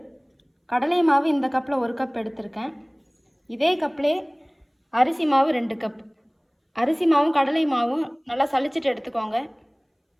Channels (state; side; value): identical; both; correlation 1.00